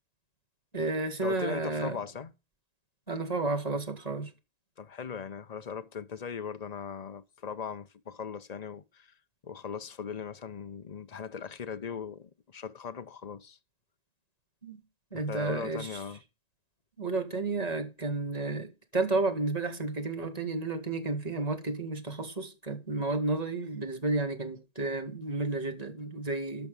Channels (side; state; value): right; late; 1.9 ms